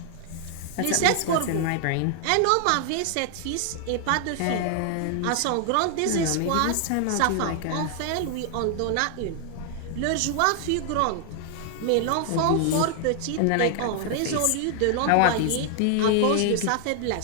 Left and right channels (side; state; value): both; different; correlation 0.00